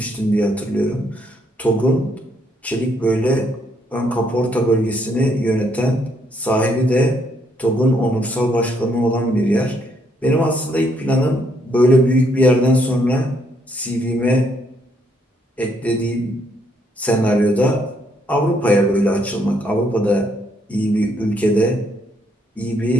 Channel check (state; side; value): normal; both; correlation 0.71